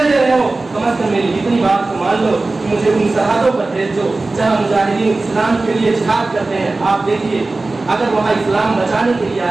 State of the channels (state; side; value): quieter; left; 3.3 dB